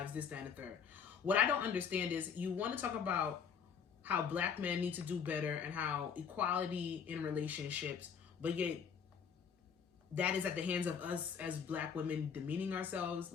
this, that, and the third. What I don't understand is you want to talk about how black men need to do better and how equality in relationships, but yet that is at the hands of us as black women demeaning ourselves,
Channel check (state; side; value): quieter; right; 6.9 dB